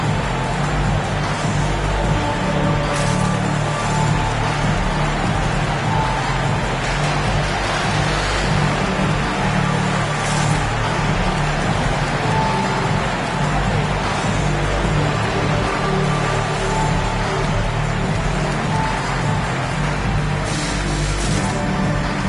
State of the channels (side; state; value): both; identical; correlation 1.00